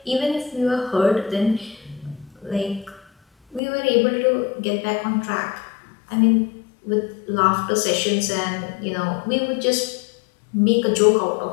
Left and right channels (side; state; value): right; drops out; at 3.6 s